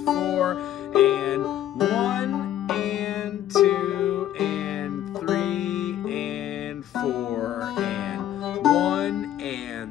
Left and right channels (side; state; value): right; quieter; 11.9 dB